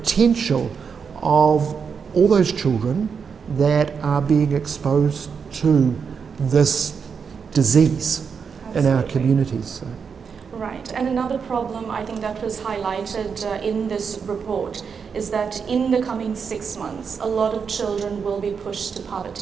of all those children that are being exposed to this disease in our communities. So. Right, and another problem I think that was highlighted in this report is that in the coming 6 months, a lot of children will be pushed to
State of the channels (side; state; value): left; quieter; 6.2 dB